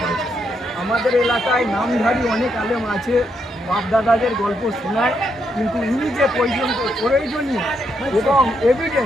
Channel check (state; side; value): normal; both; correlation 0.78